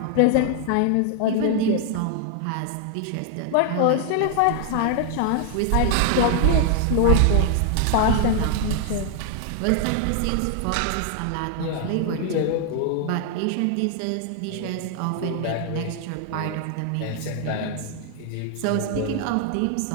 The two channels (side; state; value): both; different; correlation 0.00